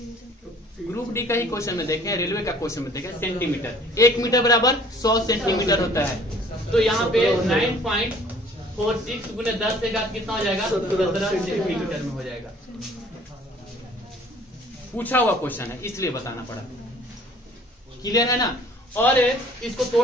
ग्रुप डी का ही क्वेश्चन में देखें, रेलवे का क्वेश्चन में देखें, सेंटीमीटर, 1 मीटर बराबर 100 सेंटीमीटर होता है। तो यहाँ पे 9.46 गुने 10⁵ कितना हो जाएगा, 17 सेंटीमीटर में हो जाएगा। पूछा हुआ क्वेश्चन है इसलिए बताना पड़ा, क्लियर है ना। और इसको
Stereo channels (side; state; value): both; normal; correlation 0.54